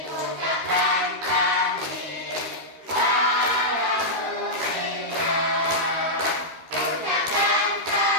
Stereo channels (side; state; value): left; late; 13 ms